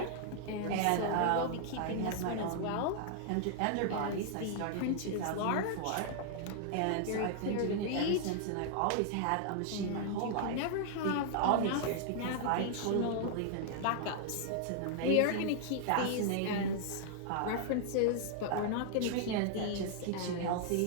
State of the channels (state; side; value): different; both; correlation -0.01